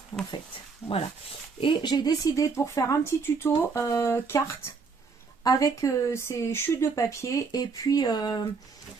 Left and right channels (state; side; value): quieter; left; 4.9 dB